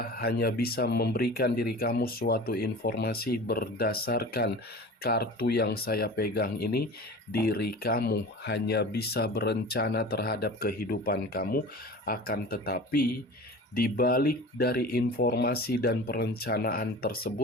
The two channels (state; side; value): normal; both; correlation 0.37